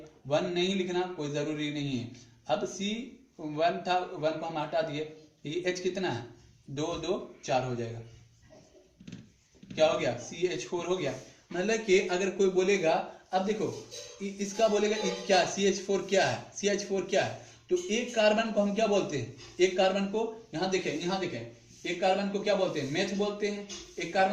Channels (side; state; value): both; identical; correlation 1.00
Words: 1 नहीं लिखना कोई जरूरी नहीं है। अब C1 था, 1 को हम हटा दिए, ये H कितना है 2 2 4 हो जाएगा, क्या हो गया CH4 हो गया। मतलब कि अगर कोई बोलेगा, अब देखो इसका बोलेगा क्या CH4 क्या है, CH4 क्या है, तो एक कार्बन को हम क्या बोलते हैं, एक कार्बन को यहाँ देखें एक कार्बन को क्या बोलते हैं मेथ बोलते हैं, एक